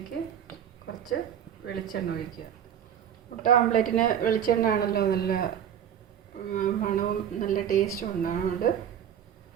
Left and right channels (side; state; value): left; quieter; 9.3 dB